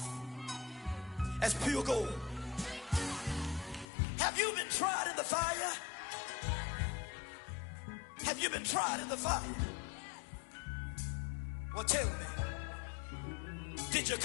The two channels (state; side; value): drops out; right; at 3.9 s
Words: as pure gold. Have you been tried in the fire? Have you been tried in the fire? Well, tell me, did you